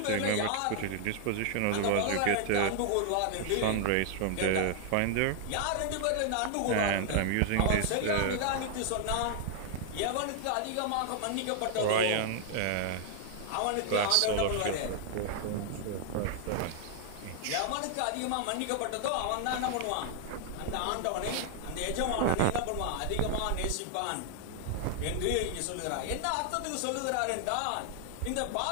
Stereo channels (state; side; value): different; both; correlation 0.00